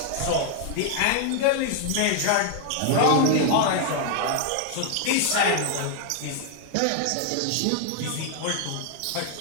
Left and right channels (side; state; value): both; different; correlation 0.00